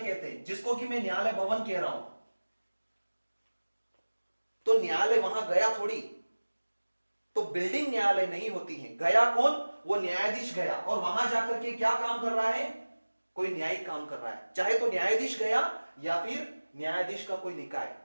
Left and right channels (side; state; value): both; inverted; correlation -1.00